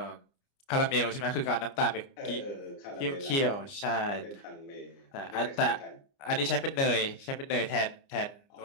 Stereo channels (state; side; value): late; right; 29 ms